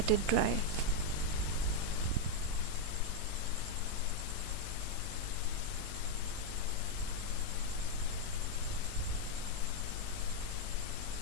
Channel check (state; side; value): different; both; correlation 0.00